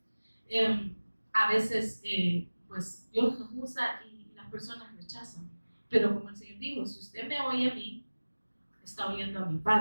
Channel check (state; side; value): inverted; both; correlation -1.00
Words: a veces, pues, Dios nos usa y las personas rechazan. Pero como el Señor dijo, si usted me oye a mí, está oyendo a mi